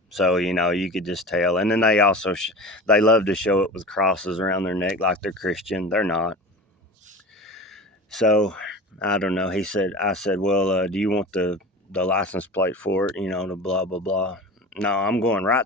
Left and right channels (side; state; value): both; normal; correlation 0.33